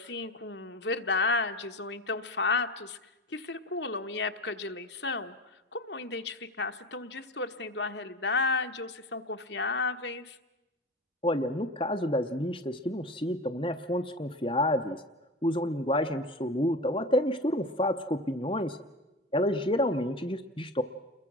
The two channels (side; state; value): both; normal; correlation 0.30